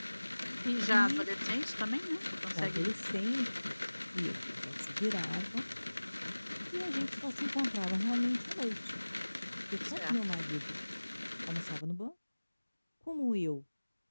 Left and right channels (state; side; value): inverted; both; correlation -1.00